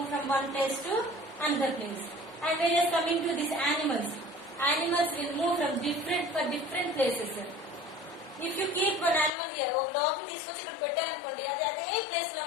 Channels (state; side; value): drops out; right; at 9.3 s